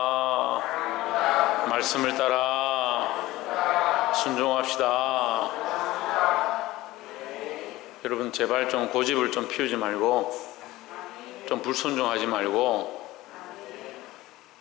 말씀을 따라 순종합시다. 여러분 제발 좀 고집을 좀 피우지 말고 좀 불순종하지 말고.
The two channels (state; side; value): quieter; right; 17.7 dB